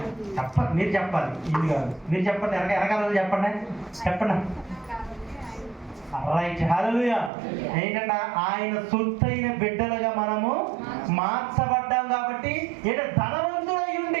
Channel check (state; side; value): drops out; left; at 7.3 s